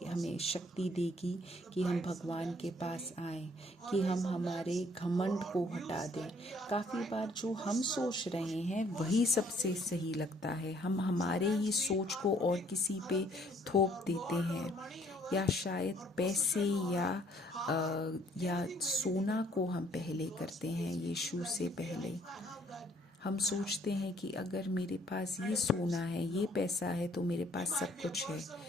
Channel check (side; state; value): both; normal; correlation 0.62